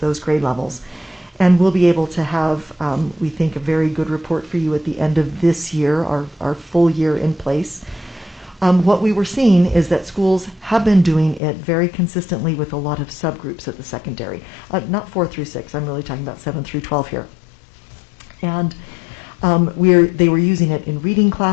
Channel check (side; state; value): right; drops out; at 11.4 s